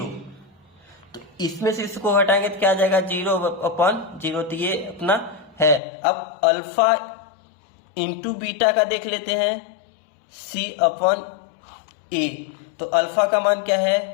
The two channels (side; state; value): right; drops out; at 5.8 s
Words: तो इसमें से इसको हटाएंगे तो क्या आ जाएगा 0/0। तो ये अपना है। अब अल्फा इंटू बीटा का देख लेते हैं C/A। तो अल्फा का मान क्या